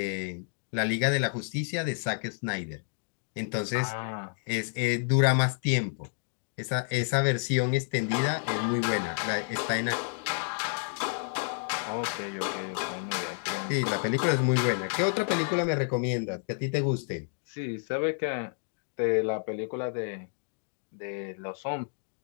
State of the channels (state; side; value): silent; right; digital silence